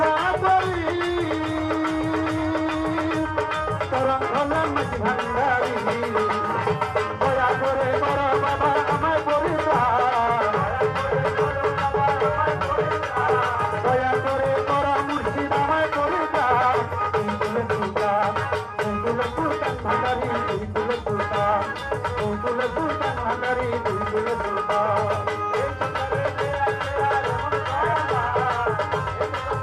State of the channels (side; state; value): both; identical; correlation 1.00